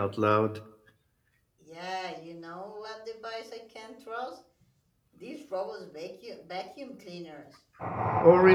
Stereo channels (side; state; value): both; identical; correlation 1.00